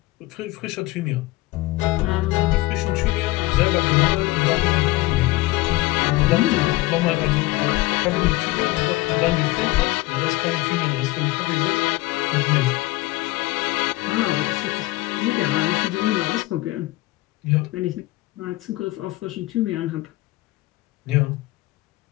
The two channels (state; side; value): quieter; right; 19.8 dB